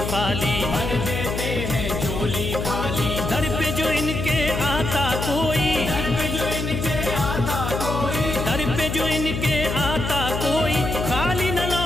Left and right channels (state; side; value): noise; left; hum, 3 dB below the sound